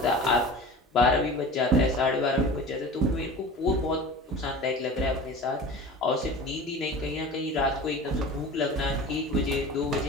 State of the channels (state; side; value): normal; both; correlation 0.36